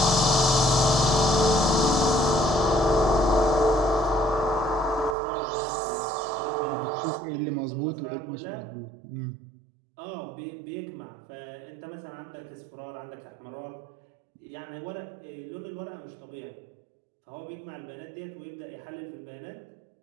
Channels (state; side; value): drops out; left; at 5.2 s